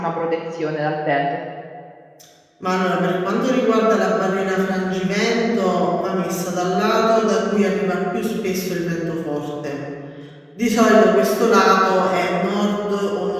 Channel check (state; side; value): identical; both; correlation 1.00